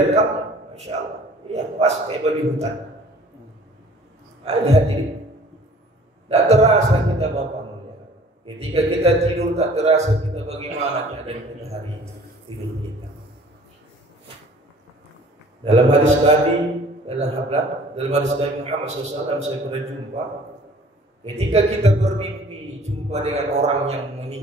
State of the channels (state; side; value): normal; both; correlation 0.51